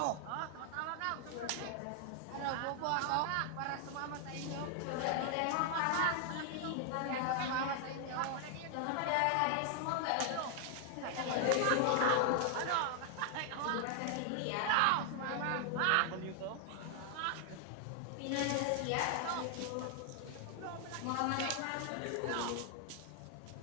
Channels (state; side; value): different; both; correlation 0.00